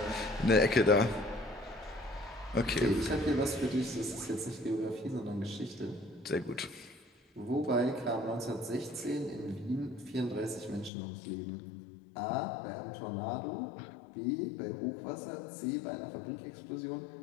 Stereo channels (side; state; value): right; drops out; at 10.9 s